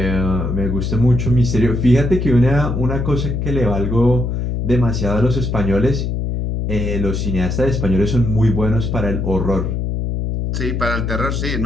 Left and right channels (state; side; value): noise; left; hum, 1 dB below the sound